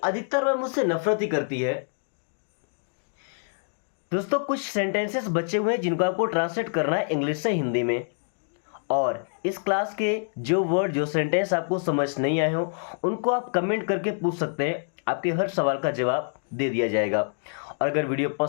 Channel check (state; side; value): silent; right; digital silence